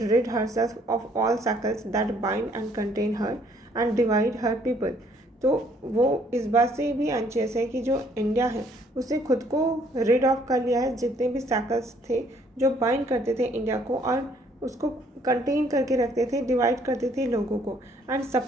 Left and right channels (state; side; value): normal; both; correlation 0.64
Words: rid herself of all shackles that bind and contain her and divide her people. तो वो इस बात से भी एंशियस है कि जो इंडिया है उसने खुद को रिड ऑफ कर लिया है जितने भी सैकल्स थे जो बाइंड करते थे इंडिया को और उसको कंटेन करके रखते थे, डिवाइड करते थे लोगों को, and